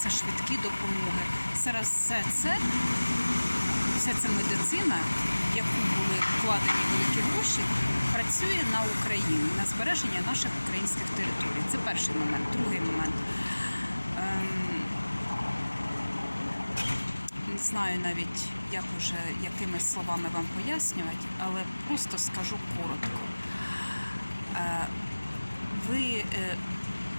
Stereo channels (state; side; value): inverted; both; correlation -1.00